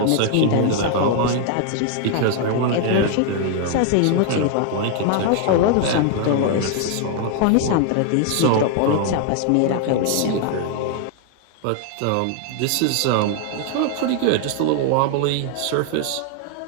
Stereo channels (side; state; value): both; different; correlation 0.00